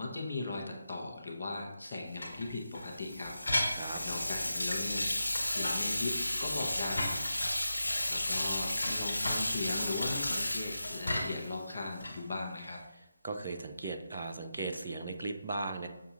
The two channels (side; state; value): both; inverted; correlation -0.89